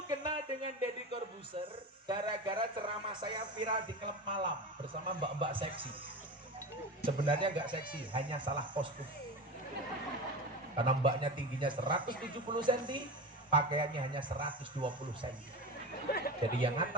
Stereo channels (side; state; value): both; normal; correlation 0.27